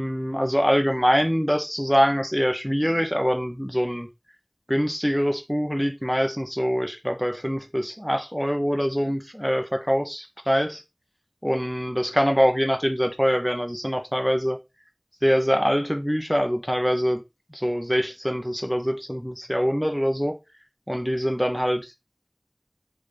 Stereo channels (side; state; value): both; identical; correlation 1.00